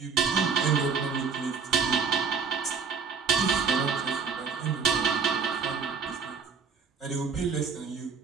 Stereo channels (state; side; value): quieter; left; 5.6 dB